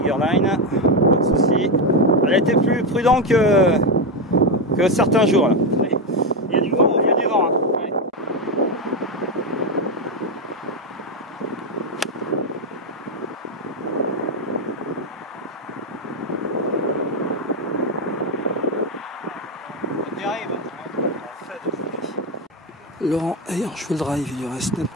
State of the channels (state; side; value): normal; both; correlation 0.09